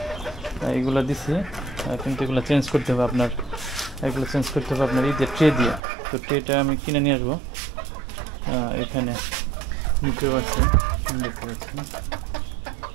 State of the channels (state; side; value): drops out; left; at 5.8 s